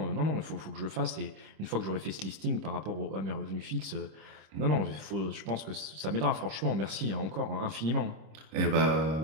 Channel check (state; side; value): late; left; 25 ms